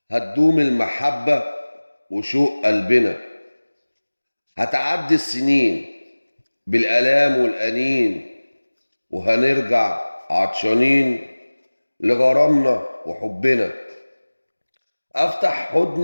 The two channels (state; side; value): inverted; both; correlation -1.00